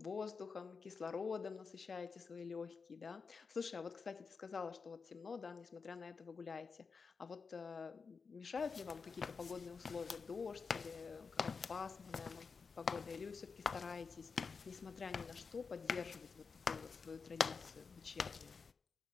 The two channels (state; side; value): quieter; right; 5.1 dB